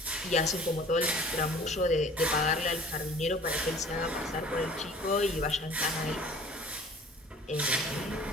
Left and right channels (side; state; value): both; normal; correlation 0.48